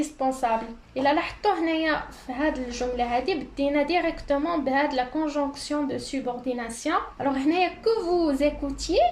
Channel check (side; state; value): both; identical; correlation 1.00